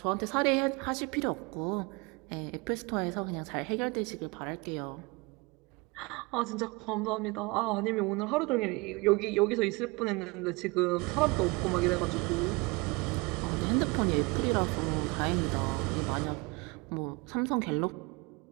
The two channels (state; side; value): quieter; left; 26.7 dB